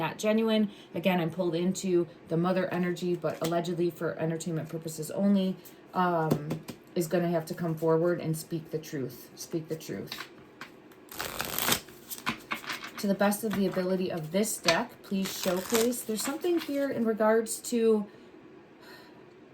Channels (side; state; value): both; identical; correlation 1.00